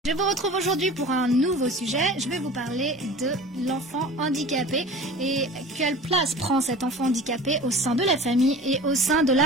Je vous retrouve aujourd'hui pour un nouveau sujet. Je vais vous parler de l'enfant handicapé et quelle place prend cet enfant handicapé au sein de la famille et au sein de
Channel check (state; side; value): normal; both; correlation 0.39